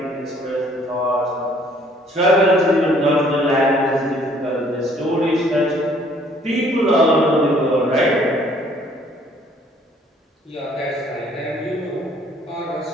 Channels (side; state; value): both; normal; correlation 0.60